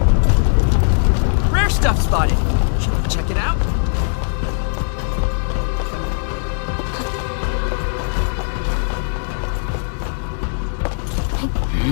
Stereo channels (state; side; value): silent; right; digital silence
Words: Rare stuff spotted. Should we check it out?